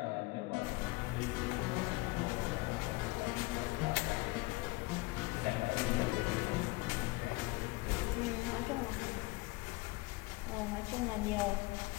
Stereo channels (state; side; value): quieter; right; 23.3 dB